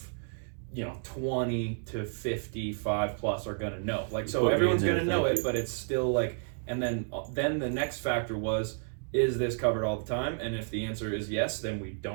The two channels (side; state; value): left; silent; digital silence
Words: 20 to 55 plus are gonna know. Like, so everyone's gonna know it, but it's still like And then the next factor was, is this covered all the time? And if the answer is yes, then we